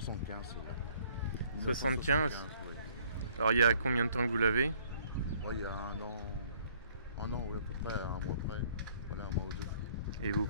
celui-là. 75. Oui. Alors il y a combien de temps que vous l'avez? Ouais, il y a un an, oui, à peu près, un mois près. Voilà, un mois ou deux. Et vous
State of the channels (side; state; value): both; inverted; correlation -0.60